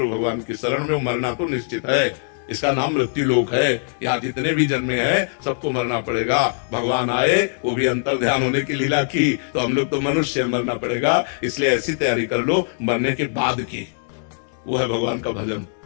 भगवान की शरण में। मरना तो निश्चित है, इसका नाम मृत्यु लोक है। यहाँ जितने भी जन्मे हैं सबको मरना पड़ेगा। भगवान आए, वो भी अंतर ध्यान होने की लीला की, तो हम लोग तो मनुष्य मरना पड़ेगा। इसलिए ऐसी तैयारी कर लो मरने के बाद की, वो है भगवान का भजन।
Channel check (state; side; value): silent; right; digital silence